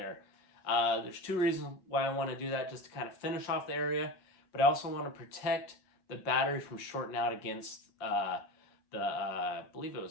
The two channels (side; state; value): right; late; 5.6 ms